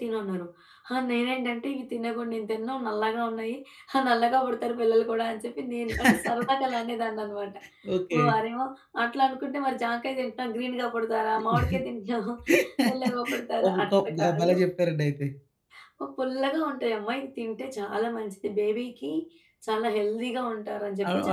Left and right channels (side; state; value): both; identical; correlation 1.00